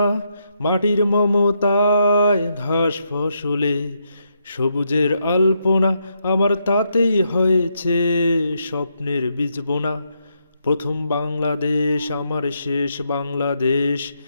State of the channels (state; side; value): inverted; both; correlation -0.79